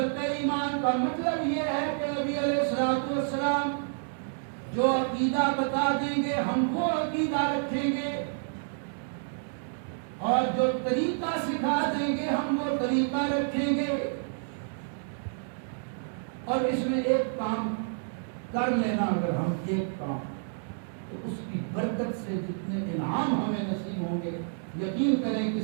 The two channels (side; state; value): left; silent; digital silence